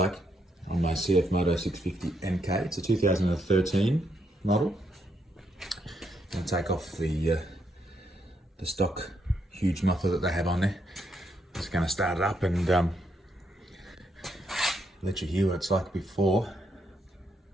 on my CFMoto 650 NK. It's a 2013 model. I'm going to take off the stock huge muffler that they have on there. Just going to start it up and let you hear what it's like before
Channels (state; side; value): normal; both; correlation 0.77